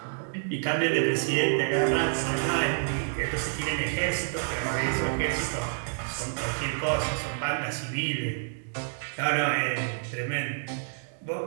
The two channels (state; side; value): silent; left; digital silence